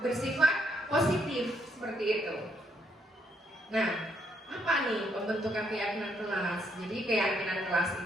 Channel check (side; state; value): both; normal; correlation 0.73